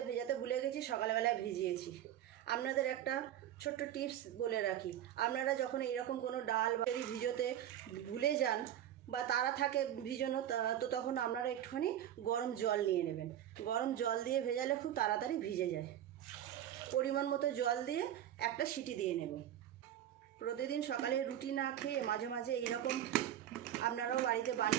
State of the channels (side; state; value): left; quieter; 11.2 dB